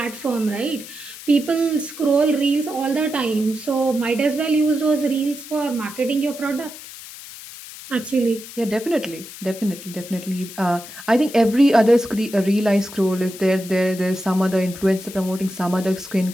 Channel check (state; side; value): noise; left; hiss, 14 dB below the sound